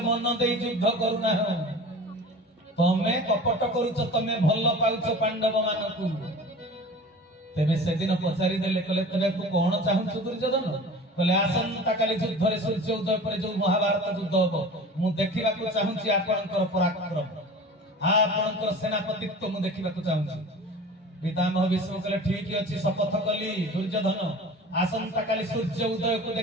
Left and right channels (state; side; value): normal; both; correlation 0.39